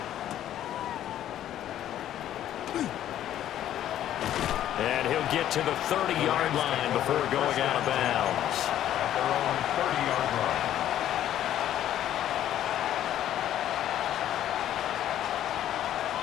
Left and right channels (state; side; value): quieter; right; 11.7 dB